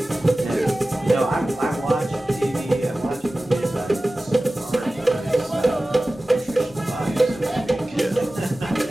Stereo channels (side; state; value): both; normal; correlation 0.96